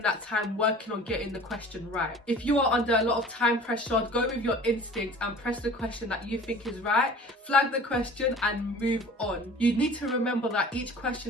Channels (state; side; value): normal; both; correlation 0.44